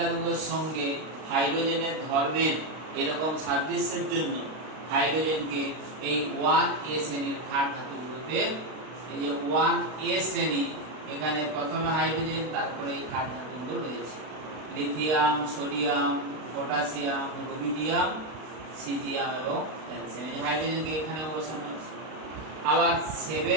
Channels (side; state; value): left; late; 32 ms